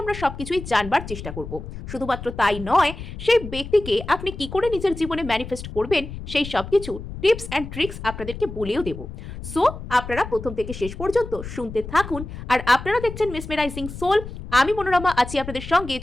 আমরা সবকিছুই জানবার চেষ্টা করব। শুধুমাত্র তাই নয়, সেই ব্যক্তিকে আপনি কি করে নিজের জীবনে ম্যানিফেস্ট করবেন সেই সবকিছু টিপস অ্যান্ড ট্রিক্স আপনাদেরকে বলেও দেব। সো আপনারা প্রথম থেকে শেষ পর্যন্ত শুনতে থাকুন। আর আপনারা দেখছেন মেসমেরাইজিং সোল, আমি মনোরমা আছি আপনাদের সঙ্গে।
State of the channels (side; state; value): left; noise; rumble, 10 dB below the sound